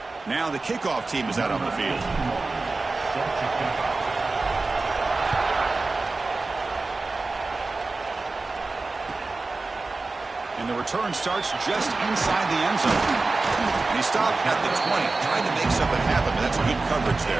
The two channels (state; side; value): quieter; left; 3.6 dB